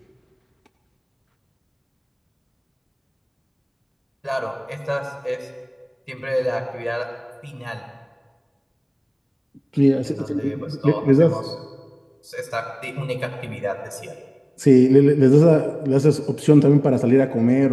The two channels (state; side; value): identical; both; correlation 1.00